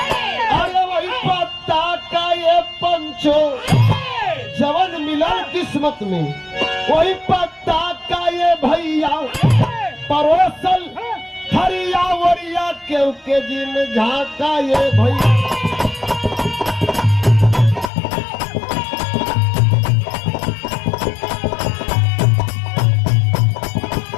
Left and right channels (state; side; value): drops out; right; at 17.9 s